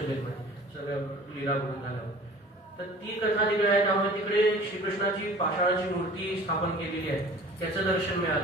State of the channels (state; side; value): normal; both; correlation 0.45